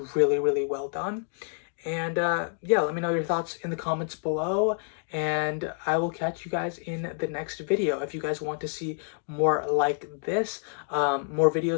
really, really well done. And yeah, let me know your thoughts in the comments below, and I will catch you guys in the next video. If you guys want to see more like this, more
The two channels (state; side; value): silent; right; 59 dB below the other